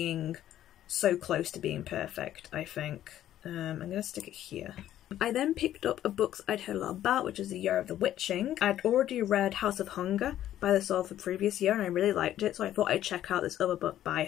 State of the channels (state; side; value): quieter; right; 12.2 dB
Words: so close to being perfect, I think. I'm gonna stick it here. I then picked up a book I'd heard a lot about, which is The Year of the Witching. I'd already read House of Hunger by the author the previous year, and I really liked it, so I thought I'd check out this other book by